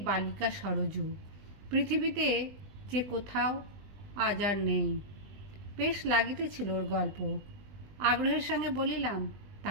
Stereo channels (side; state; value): left; late; 20 ms